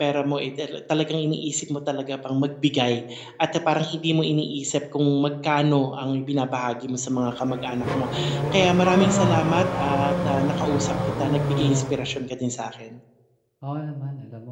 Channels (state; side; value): identical; both; correlation 1.00